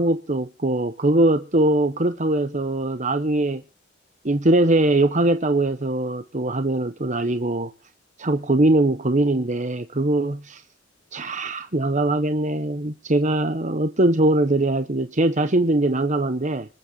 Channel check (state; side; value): normal; both; correlation 0.51